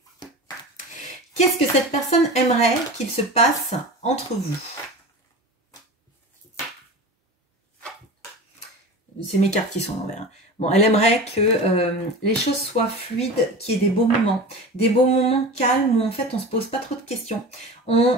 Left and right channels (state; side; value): normal; both; correlation 0.33